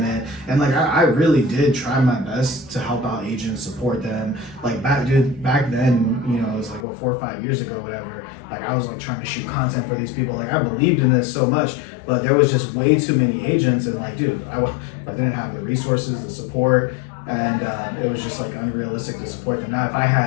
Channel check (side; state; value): right; drops out; at 6.9 s